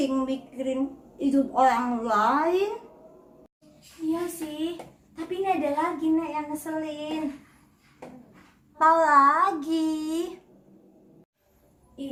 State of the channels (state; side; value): identical; both; correlation 1.00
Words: mikirin hidup orang lain? Iya sih, tapi ini ada lagi Nek yang ngeselin. Apa lagi?